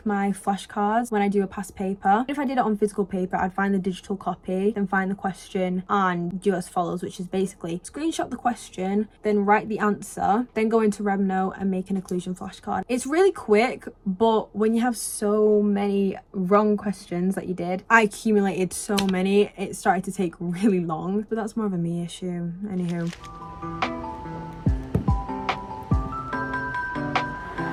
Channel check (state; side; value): identical; both; correlation 1.00